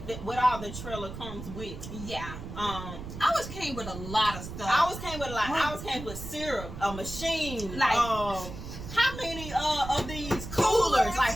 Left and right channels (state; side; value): noise; right; rumble, 10 dB below the sound